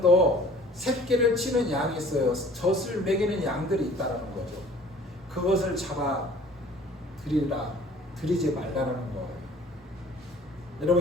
새끼를 치는 양이 있어요. 젖을 먹이는 양들이 있다는 거죠. 그것을 잡아 드리라, 드리지 말라는 거예요.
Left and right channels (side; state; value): both; normal; correlation 0.50